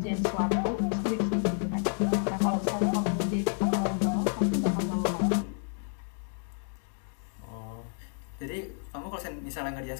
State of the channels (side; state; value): right; silent; 55 dB below the other